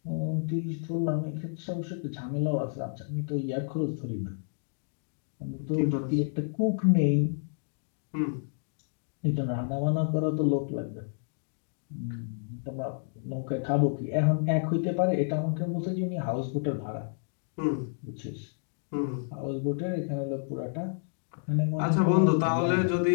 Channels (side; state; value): right; silent; digital silence